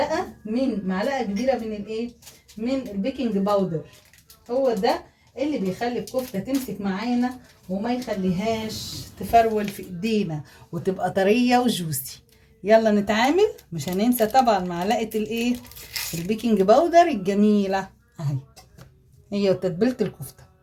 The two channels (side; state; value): both; identical; correlation 1.00